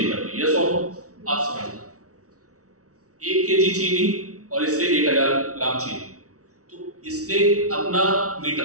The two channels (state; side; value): late; left; 0.66 ms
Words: कर दी। यस और नो? आप समझना, 1 केजी चीनी और इससे 1000 ग्राम चीनी, तो इसने अपना